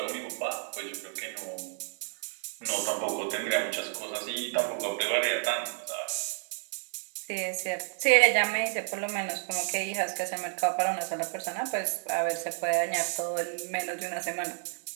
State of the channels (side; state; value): left; silent; 57 dB below the other